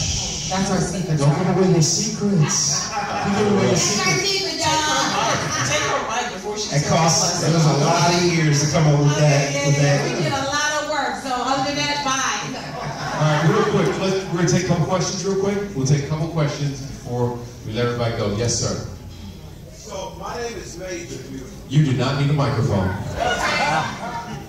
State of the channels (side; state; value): both; identical; correlation 1.00